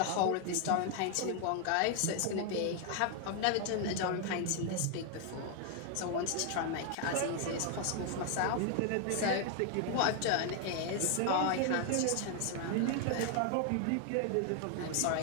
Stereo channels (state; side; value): different; both; correlation 0.00